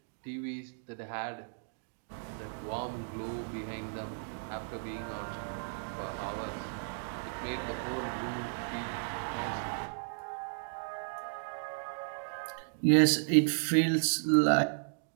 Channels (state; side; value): silent; left; digital silence